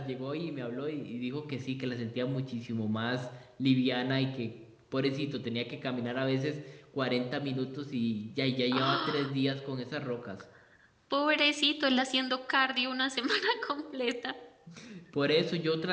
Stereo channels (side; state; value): both; identical; correlation 1.00